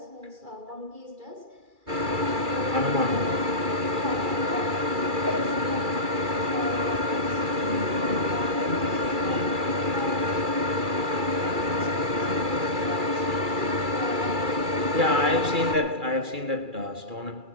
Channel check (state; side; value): late; left; 2.3 ms